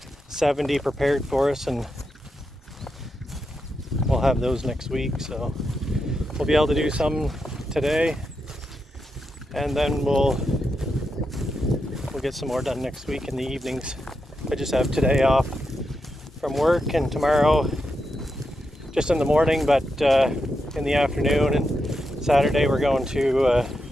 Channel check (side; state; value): both; normal; correlation 0.86